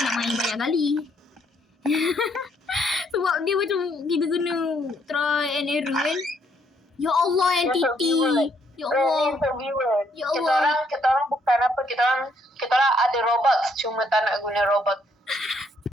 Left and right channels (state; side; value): normal; both; correlation 0.70